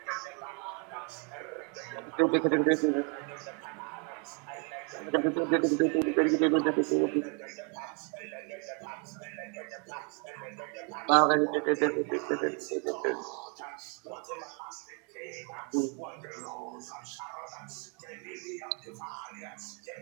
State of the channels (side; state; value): left; quieter; 36.4 dB